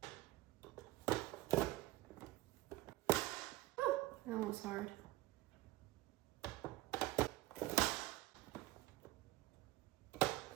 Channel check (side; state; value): left; quieter; 17.9 dB